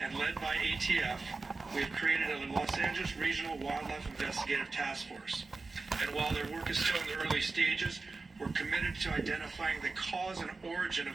and led by ATF, we have created a Los Angeles Regional Wildlife Investigative Task Force. And while their work is still in the early stages, we're committed to identifying the cause and origin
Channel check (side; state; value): left; quieter; 3.8 dB